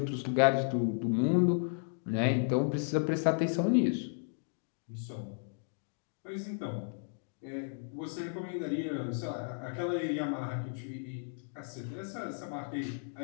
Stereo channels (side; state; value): right; silent; digital silence